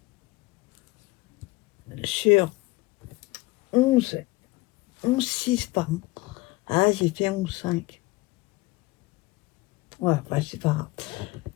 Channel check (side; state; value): right; quieter; 21.2 dB